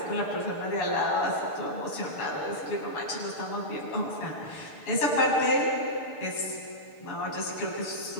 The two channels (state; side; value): late; right; 6.7 ms